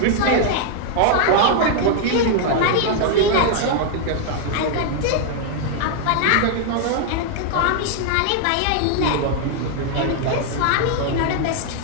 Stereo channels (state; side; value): different; both; correlation 0.00